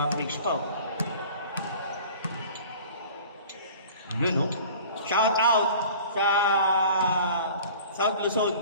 freaks pa. Yun, no? Shout out sa South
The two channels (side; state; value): both; inverted; correlation -0.44